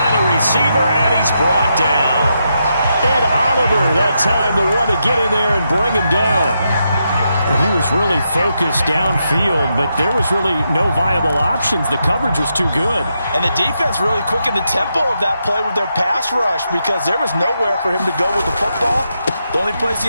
a receiver, and he's brought down. Ed Oliver, that time, the one to get in there and bring him down. He was really focused downfield, but there was really no viable options. The coverage was too good. And the defense really quickened the tempo of that play with their pass rush, because there was nowhere for him to go with the football. The only place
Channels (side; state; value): both; inverted; correlation -0.83